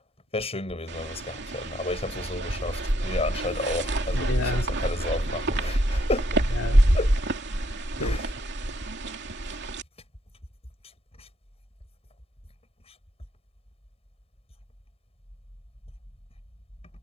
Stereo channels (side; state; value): both; normal; correlation 0.72